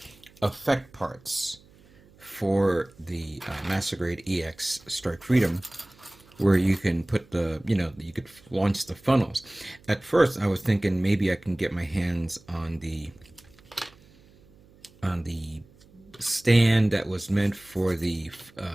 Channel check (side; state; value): right; noise; hum, 27 dB below the sound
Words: effect parts for the Master Grade EX Strike Freedom, where you can put you could launch the funnels. At first, I was thinking maybe I can get my hands on the stand that was meant for the